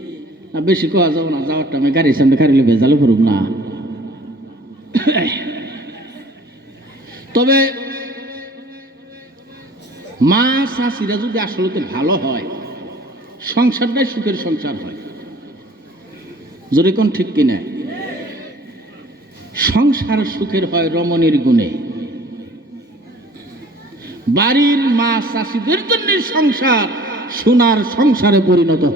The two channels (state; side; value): normal; both; correlation 0.51